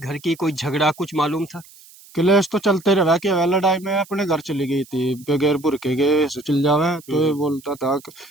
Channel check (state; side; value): noise; right; hiss, 23 dB below the sound